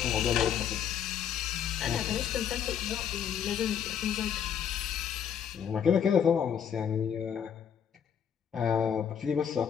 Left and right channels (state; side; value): quieter; right; 8.4 dB